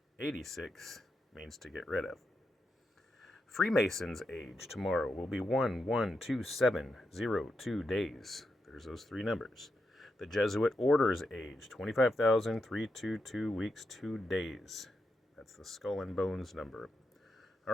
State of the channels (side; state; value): both; normal; correlation 0.85